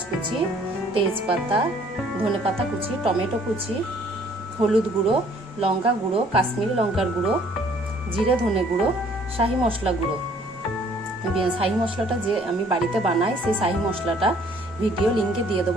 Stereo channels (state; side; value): normal; both; correlation 0.59